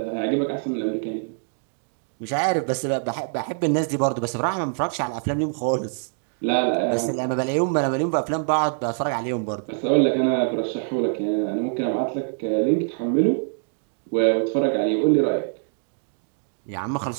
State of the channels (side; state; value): left; silent; digital silence